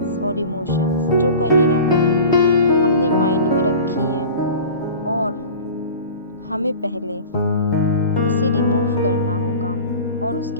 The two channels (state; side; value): inverted; both; correlation -0.37